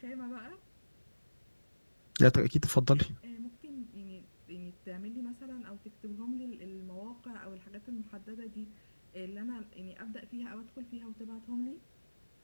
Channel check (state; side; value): inverted; both; correlation -1.00